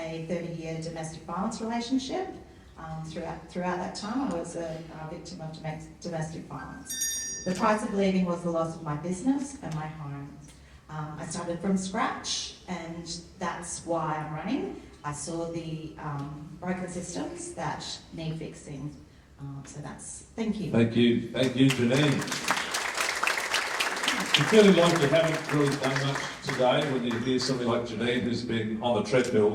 30-year domestic violence relationship. Throughout that time, I was a victim of domestic violence. The price of leaving was the loss of my business and my home. I started from scratch, and that's why I'm running. I saw the broken systems that need fixing. Thank you. Thank you, Janine. You feeling like you haven't really done much today when you hear somebody like Janine who's been on the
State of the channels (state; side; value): identical; both; correlation 1.00